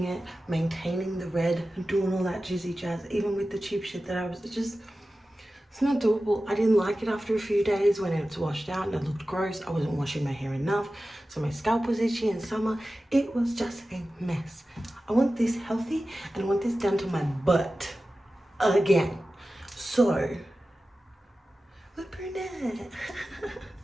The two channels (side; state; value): both; normal; correlation 0.95